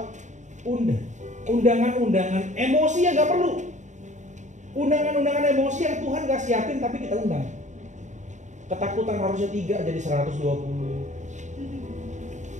undangan-undangan emosi yang nggak perlu. Undangan-undangan emosi yang Tuhan nggak siapin tapi kita undang. Ketakutan harusnya 3 jadi 120.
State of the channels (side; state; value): left; late; 0.35 ms